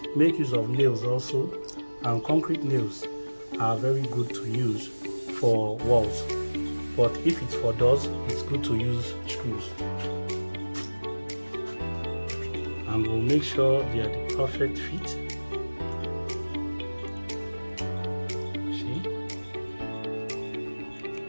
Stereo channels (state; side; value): inverted; both; correlation -1.00